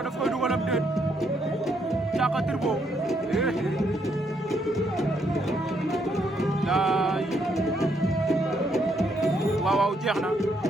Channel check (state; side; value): normal; both; correlation 0.74